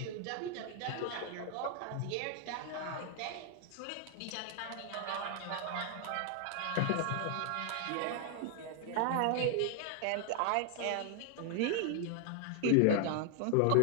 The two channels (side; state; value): both; different; correlation 0.00